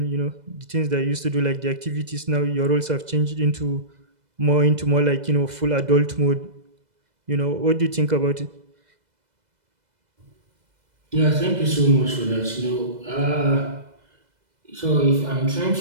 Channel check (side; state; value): left; late; 2.0 ms